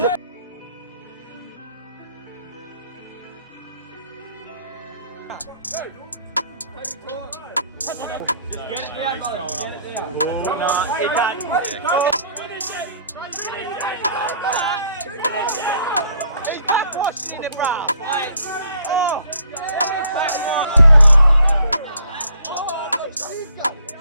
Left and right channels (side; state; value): both; inverted; correlation -0.61